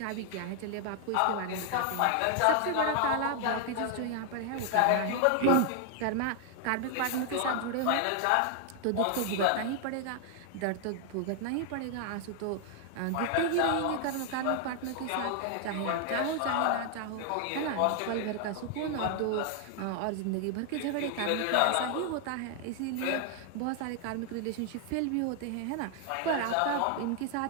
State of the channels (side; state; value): both; different; correlation 0.00